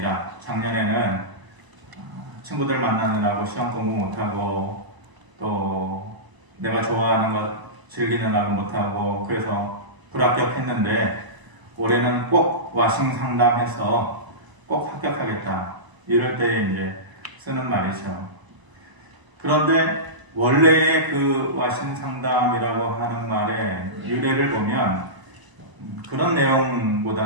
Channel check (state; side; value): late; left; 1.0 ms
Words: 작년에는 친구들 만나느라고 시험 공부 못하고 또 내가 좋아하는 것 즐기느라고 못하고 그래서 불합격했는데 올해는 꼭 와싱 상담해서 꼭 합격하겠다. 이럴 때에 이제 쓰는 말이죠. 그런데 원래의 그 와싱 상담이라고 하는 말의 유래를 보면 그런